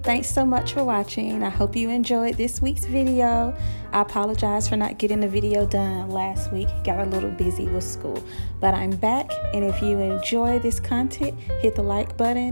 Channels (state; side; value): inverted; both; correlation -1.00